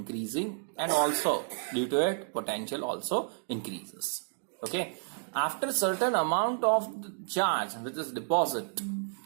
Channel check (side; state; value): left; silent; digital silence